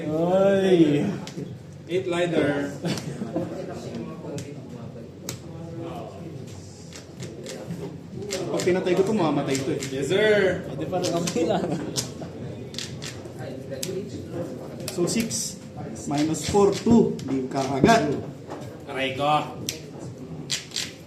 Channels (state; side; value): identical; both; correlation 1.00